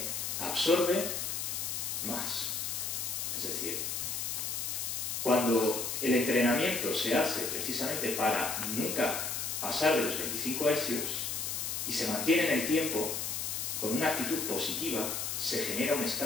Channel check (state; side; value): noise; left; hiss, 2 dB below the sound